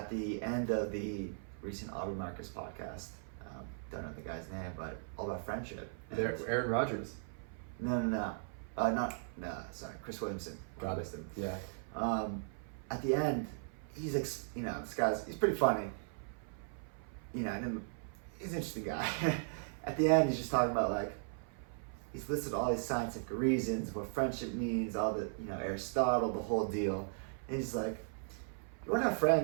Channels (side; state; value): left; silent; 53 dB below the other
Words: the end of the recent Aubrey Marcus podcast, don't know the guy's name, but all about friendship. Aaron Rodgers. No, sorry, Chris Williamson. Got it. Yeah. At the end, he's this he's pretty funny. He's an interesting guy. At the end, he's just talking about like, he's listed all these scientific reasons, what friendship means, all the, Aristotle, the whole deal. And he's like, you want to have